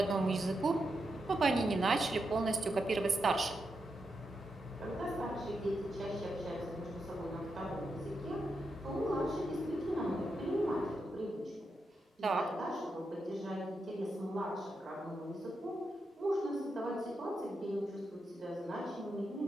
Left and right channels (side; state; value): both; normal; correlation 0.85